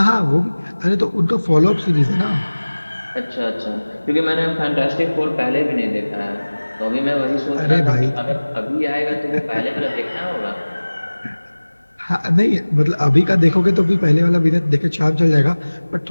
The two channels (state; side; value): inverted; both; correlation -1.00